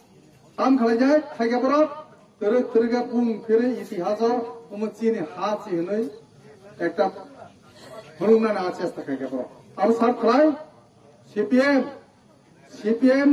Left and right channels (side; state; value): both; identical; correlation 1.00